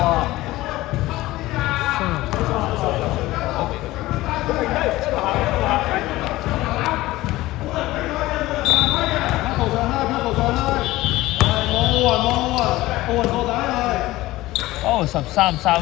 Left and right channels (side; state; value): right; quieter; 17.8 dB